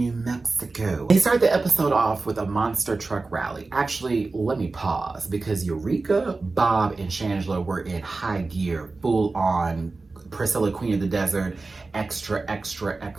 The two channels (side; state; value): left; quieter; 3.7 dB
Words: Mexico. They start the episode off with a monster truck rally. Actually, let me pause, because Eureka, Bob, and Shangela were in high gear, full on Priscilla, Queen of the Desert, extra, extra,